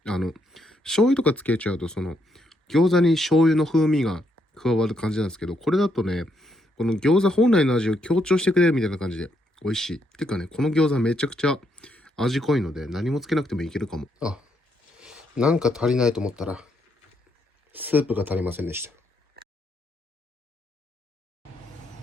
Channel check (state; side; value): normal; both; correlation 0.76